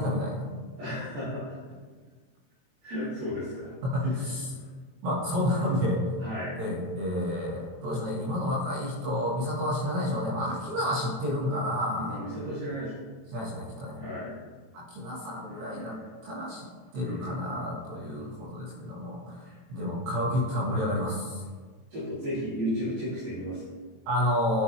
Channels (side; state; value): left; late; 22 ms